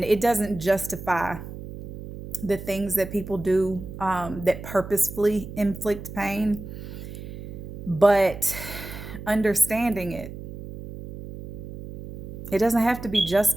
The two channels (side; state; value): right; noise; hum, 11 dB below the sound